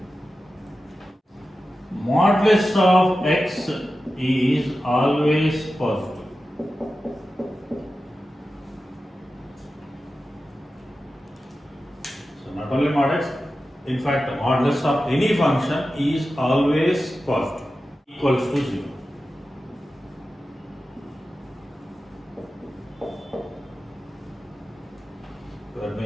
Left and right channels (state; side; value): normal; both; correlation 0.93